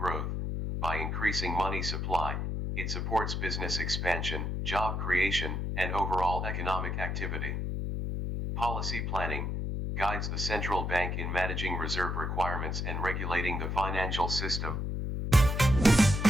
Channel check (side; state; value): left; noise; hum, 2 dB below the sound